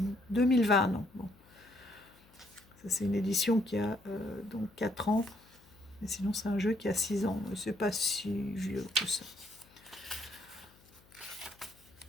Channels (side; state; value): left; noise; hum, 28 dB below the sound